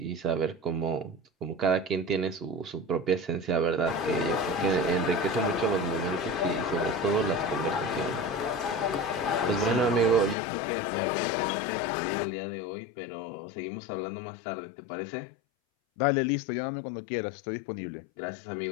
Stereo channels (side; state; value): right; drops out; at 10.4 s